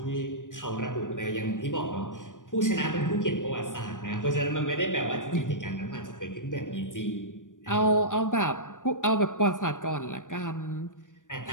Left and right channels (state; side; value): late; right; 0.87 ms